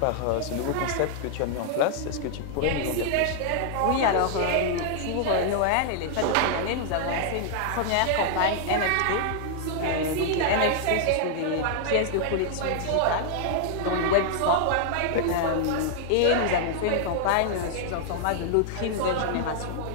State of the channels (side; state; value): both; different; correlation -0.01